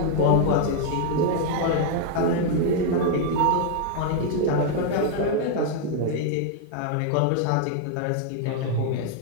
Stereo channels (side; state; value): both; different; correlation 0.00